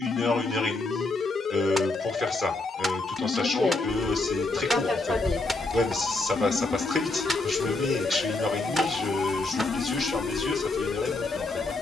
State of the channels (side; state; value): right; quieter; 3.2 dB